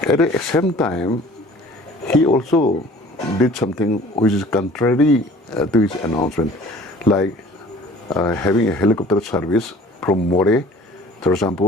At the same time, he also did something which is contrary to his announcement, like having a helicopter service from More, for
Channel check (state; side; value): normal; both; correlation 0.49